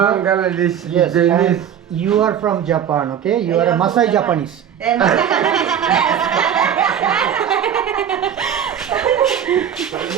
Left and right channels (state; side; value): quieter; left; 9.0 dB